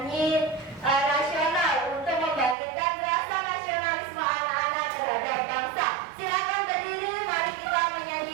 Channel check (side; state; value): left; drops out; at 2.6 s